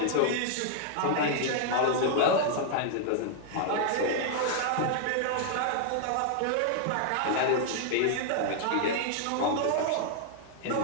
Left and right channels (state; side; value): different; both; correlation 0.00